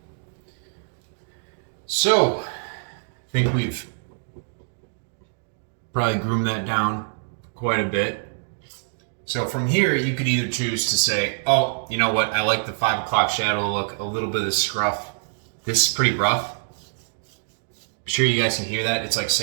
So, I think we've probably groomed that down quite a bit. So from here, you could either choose to say, oh, you know what, I like the 5 o'clock shadow look, a little bit of scruff. This is pretty rough. I'm sure you guys can hear that. It's like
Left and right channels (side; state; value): left; silent; digital silence